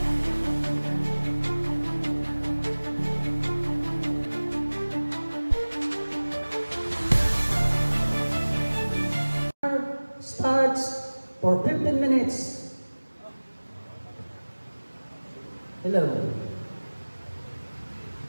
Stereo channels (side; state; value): both; inverted; correlation -1.00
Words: Starts for 15 minutes. Hello.